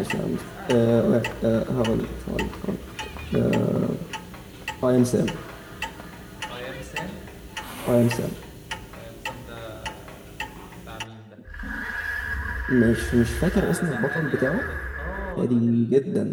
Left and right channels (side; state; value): both; identical; correlation 1.00